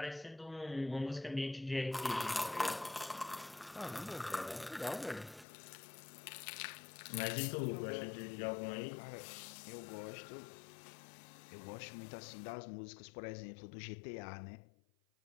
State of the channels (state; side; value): drops out; right; at 5.5 s